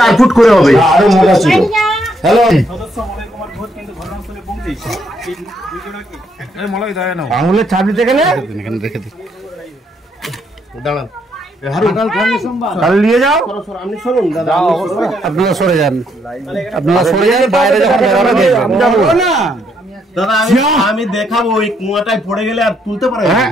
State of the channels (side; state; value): both; normal; correlation 0.73